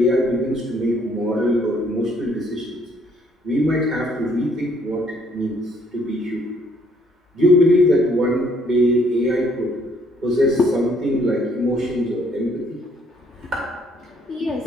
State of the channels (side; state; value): both; normal; correlation 0.65